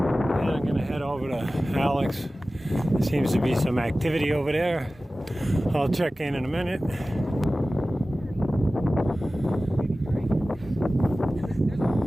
And I'm going to head over to Alex. There seems to be some activity over there. I'll check in a minute.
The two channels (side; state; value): both; normal; correlation 0.96